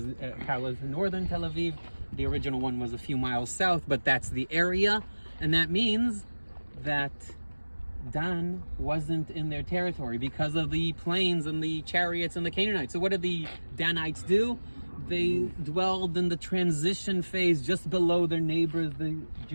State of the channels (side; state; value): both; inverted; correlation -1.00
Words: parallels northern Tel Aviv. The original one was a few miles south, but that's the area. And that means that Dan wasn't in their territory because of the plains and the chariots and the Canaanites. So what did the Danites do? They dwelled in the transition phase just below their neighbors, the